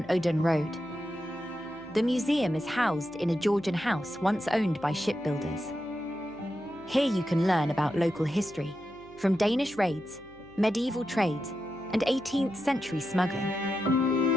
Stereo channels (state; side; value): noise; left; hum, 26 dB below the sound